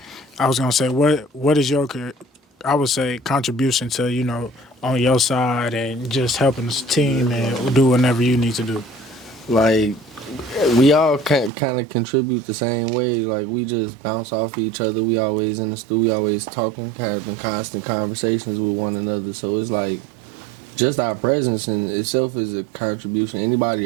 I was gonna say what is your, I would say, contribution to, you know, on your side and just helping the team and do whatever you need to do? Like, we all kind of contribute the same way. Like, we just bounce off each other. We always in the studio, we always talking, kind of in constant conversations with one another. So it's like, just our presence in itself is a contribution. Anybody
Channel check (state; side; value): drops out; left; at 11.5 s